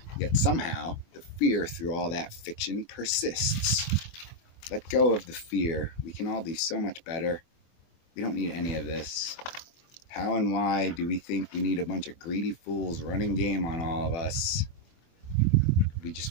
yet somehow the fear through all that fiction persists. Let go of the fear. We can all do so much better. We don't need any of this. How and why do we think we need a bunch of greedy fools running game on all of us?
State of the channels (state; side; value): late; right; 24 ms